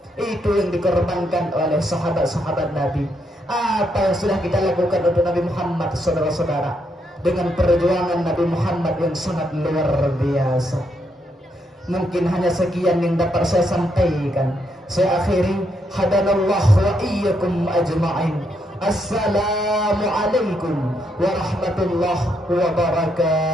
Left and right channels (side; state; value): both; normal; correlation 0.77